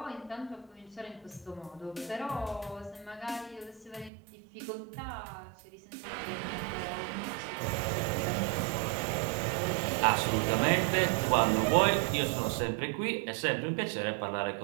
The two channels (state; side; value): drops out; left; at 4.1 s